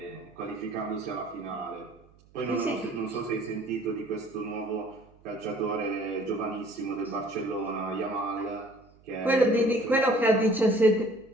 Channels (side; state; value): right; noise; hum, 28 dB below the sound